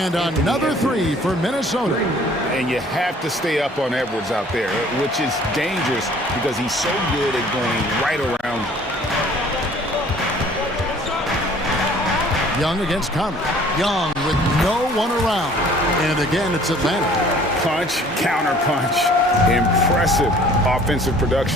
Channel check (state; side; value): normal; both; correlation 0.53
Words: another three for Minnesota. And you have to stay up on Edwards out there, which is dangerous because he's so good at going right around. Young against Conley. Young with no one around. And again, it's Atlanta. Punch, counter punch. Impressive offensive